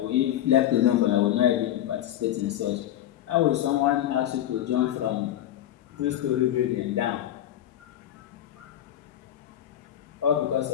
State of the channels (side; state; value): right; quieter; 11.9 dB